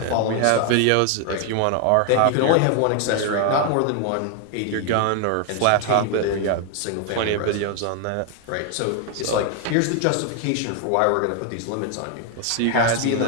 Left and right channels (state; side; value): different; both; correlation 0.00